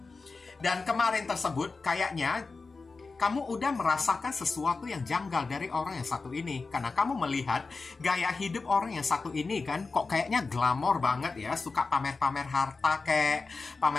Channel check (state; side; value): quieter; right; 4.1 dB